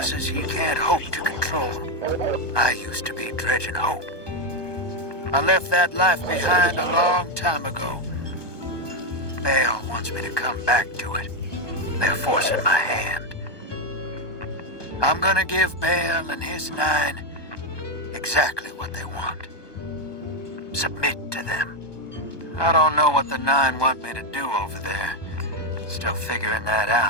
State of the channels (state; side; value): late; right; 1.2 ms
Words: he can't hope to control. I used to be Dredgen Hope. I left that life behind a long time ago. Bale wants me to come back to it. They're forcing my hand. I'm gonna give Bale and his 9 exactly what they want. Submit to them. I don't know what the 9 want me to do over there. Still figuring that